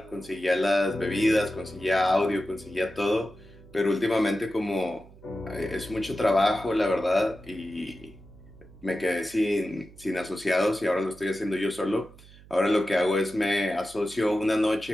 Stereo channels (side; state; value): right; noise; hum, 22 dB below the sound